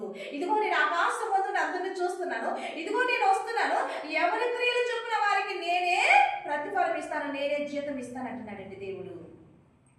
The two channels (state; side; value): identical; both; correlation 1.00